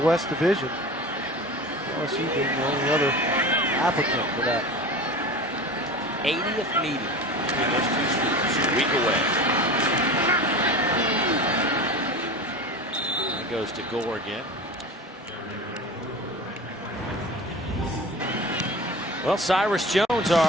Division. LSU being the only other applicant for that. 80th meeting between those two schools, a week away. That goes to Gore again. Well, Cyrus Jones,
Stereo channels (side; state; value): both; normal; correlation 0.33